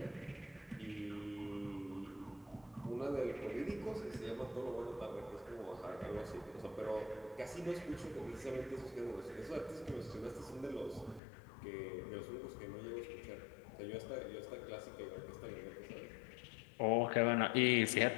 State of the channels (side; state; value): right; drops out; at 11.2 s